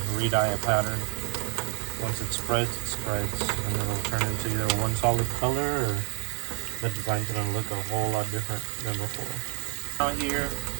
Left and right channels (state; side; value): quieter; left; 38.3 dB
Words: re-dye a pattern. Once it spreads, and it'll turn into either one solid color or the design's gonna look a whole lot different than before. Out here,